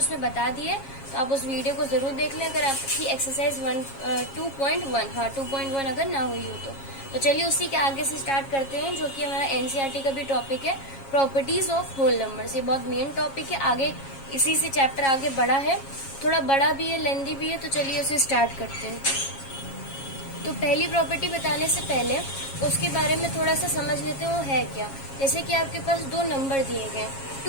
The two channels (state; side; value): late; right; 7.4 ms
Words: बता दिए, तो आप उस वीडियो को जरूर देख लें अगर आपकी एक्सरसाइज 2.1 अगर ना हुई हो तो चलिए उसी के आगे से स्टार्ट करते हैं, जो कि हमारा एनसीईआरटी का भी टॉपिक है, प्रॉपर्टीज ऑफ होल नंबर्स। ये बहुत मेन टॉपिक है, आगे इसी से चैप्टर आगे बड़ा है, थोड़ा बड़ा भी है, लेंदी भी है, तो चलिए उसे स्टार्ट करते हैं। तो पहली प्रॉपर्टी बताने से पहले उसके बारे में थोड़ा सा समझ लेते हैं वो है क्या। जैसे कि आपके पास 2 नंबर दिए गए,